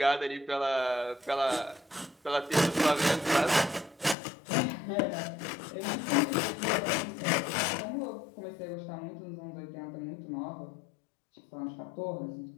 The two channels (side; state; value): right; drops out; at 4.2 s